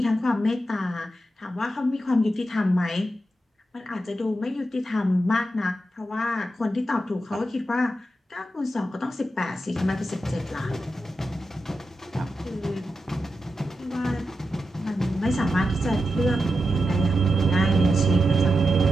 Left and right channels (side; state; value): both; normal; correlation 0.88